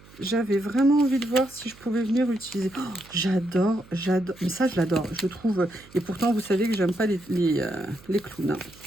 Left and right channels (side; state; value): right; noise; hum, 23 dB below the sound